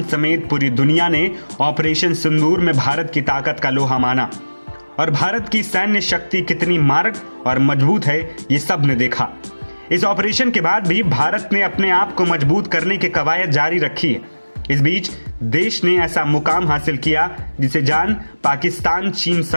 समेत पूरी दुनिया ने ऑपरेशन सिंदूर में भारत की ताकत का लोहा माना और भारत की सैन्य शक्ति कितनी मारक और मजबूत है ये सब ने देखा। इस ऑपरेशन के बाद भी भारत ने अपने आप को मजबूत करने की कवायद जारी रखी है। इस बीच देश ने ऐसा मुकाम हासिल किया जिसे जान पाकिस्तान, चीन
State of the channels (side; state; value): both; inverted; correlation -1.00